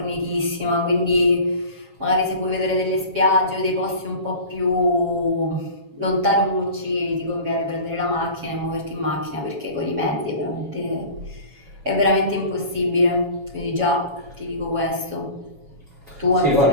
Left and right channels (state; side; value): late; left; 7.2 ms